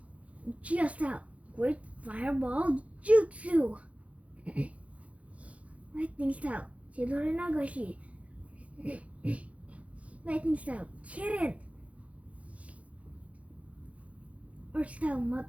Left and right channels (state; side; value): late; left; 0.065 ms